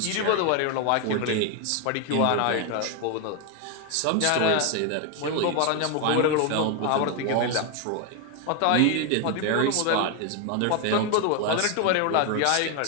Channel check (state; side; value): different; both; correlation 0.01